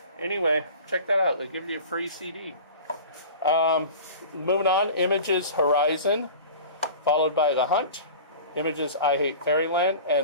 Anyway, check that out. They give you a free CD. Moving on, Images Horizon, followed by The Hunt. Images I Hate Fairyland,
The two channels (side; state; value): both; inverted; correlation -0.38